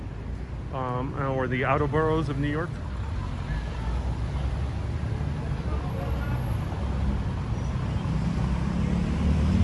Or the outer boroughs of New York.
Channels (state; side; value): identical; both; correlation 1.00